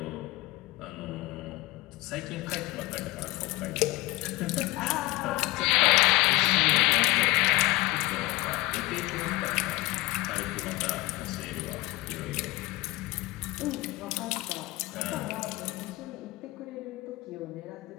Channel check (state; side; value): quieter; right; 21.0 dB